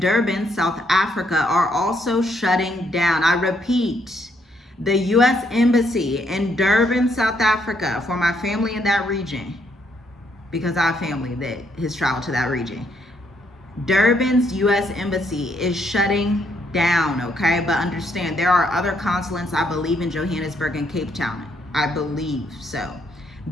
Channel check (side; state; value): both; normal; correlation 0.73